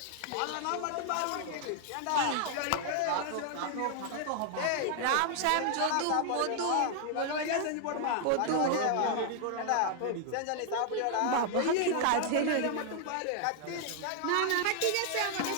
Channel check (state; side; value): different; both; correlation 0.00